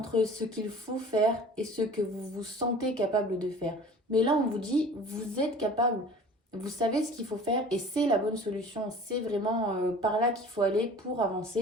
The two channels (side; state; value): both; normal; correlation 0.44